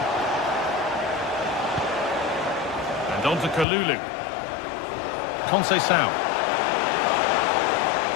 And on to Kalulu. Conceição.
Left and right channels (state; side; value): drops out; right; at 3.7 s